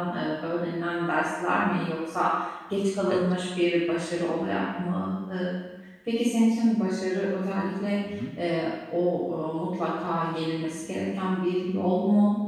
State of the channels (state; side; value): identical; both; correlation 1.00